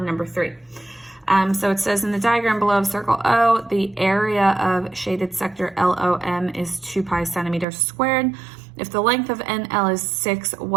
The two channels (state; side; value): drops out; left; at 7.7 s